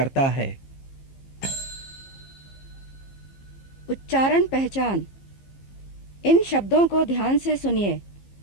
है। उच्चारण पहचान। इन शब्दों को ध्यान से सुनिए।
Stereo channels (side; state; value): right; late; 15 ms